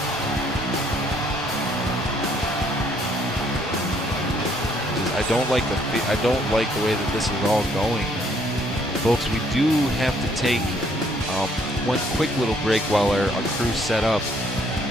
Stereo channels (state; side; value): normal; both; correlation 0.66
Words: I don't like the way that this is all going, folks. We do have to take one quick little break while our crew's set up.